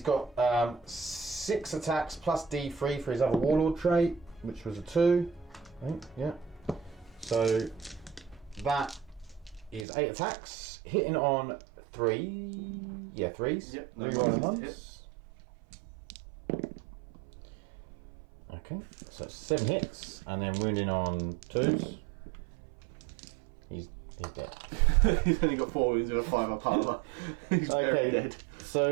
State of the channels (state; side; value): drops out; left; at 9.9 s